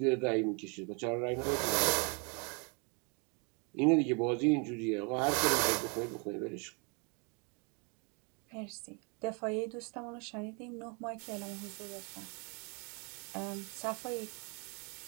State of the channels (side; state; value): left; quieter; 34.0 dB